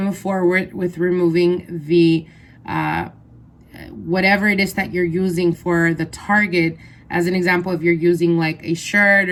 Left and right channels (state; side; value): identical; both; correlation 1.00